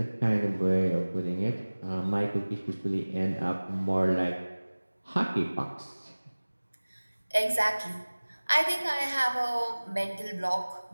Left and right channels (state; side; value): inverted; both; correlation -1.00